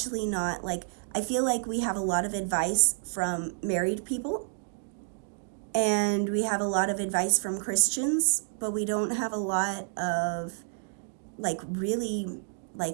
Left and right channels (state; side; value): silent; left; digital silence